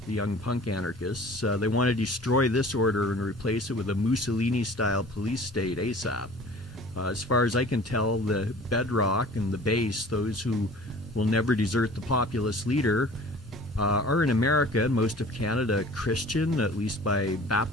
young punk anarchists. They want to destroy this order and replace it with a Mussolini-style police state ASAP. As far as I can tell, the bedrock and the base, those who will never desert the populist leader, are in America and most of Canada Christian, at least by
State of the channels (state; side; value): normal; both; correlation 0.46